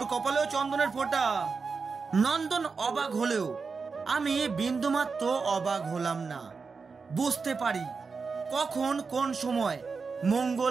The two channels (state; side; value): quieter; left; 4.9 dB